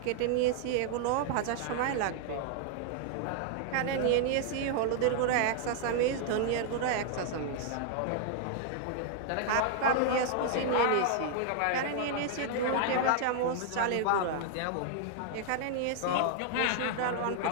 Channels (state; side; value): different; both; correlation 0.00